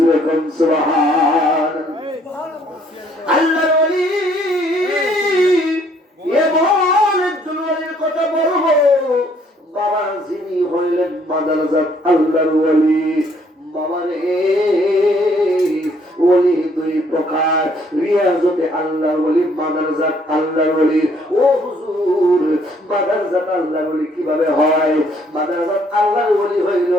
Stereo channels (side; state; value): both; normal; correlation 0.64